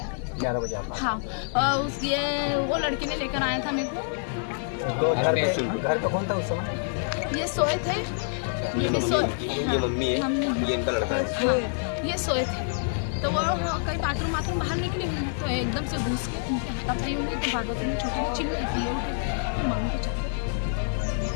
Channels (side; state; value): right; silent; 60 dB below the other